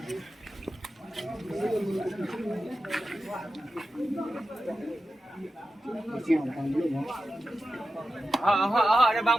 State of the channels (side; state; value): both; normal; correlation 0.92